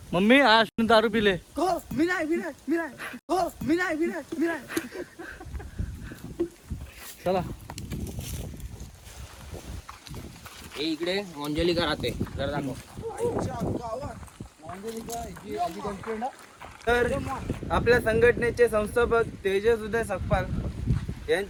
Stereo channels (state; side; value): identical; both; correlation 1.00